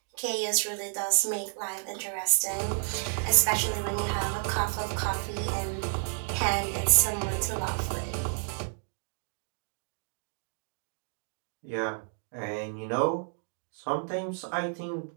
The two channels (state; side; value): silent; left; 57 dB below the other